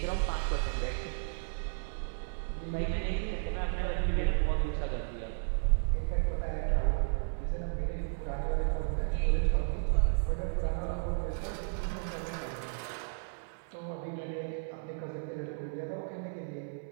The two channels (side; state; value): left; silent; 55 dB below the other